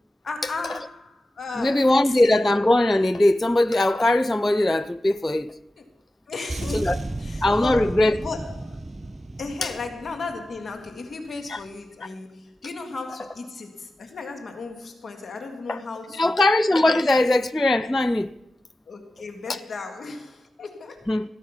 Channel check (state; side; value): normal; both; correlation 0.94